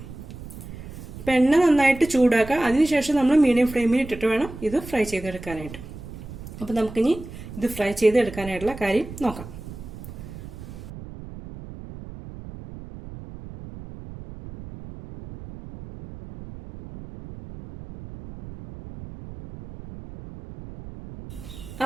അപ്പം എണ്ണ നന്നായിട്ട് ചൂടാക്കുക. അതിനുശേഷം നമ്മൾ മീഡിയം ഫ്ലെയിമിൽ ഇട്ടിട്ട് വേണം ഇത് ഫ്രൈ ചെയ്തെടുക്കാനായിട്ട്. അപ്പം നമുക്കിനി ഇത് ഫ്രൈ ചെയ്തെടുക്കാനായിട്ടുള്ള കാര്യം നോക്കാം.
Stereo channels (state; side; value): noise; right; rumble, 13 dB below the sound